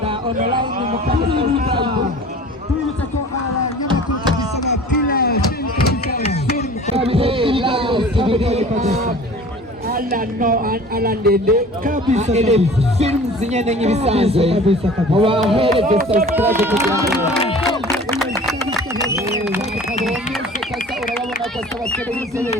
online mu kabisa. Tubutse ko abanyamakuru kabisa na Pila film kabisa. Alandende kabisa. Film zinyene nk'ibisanzwe. Mubahereze subscribe kugira ngo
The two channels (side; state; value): both; normal; correlation 0.44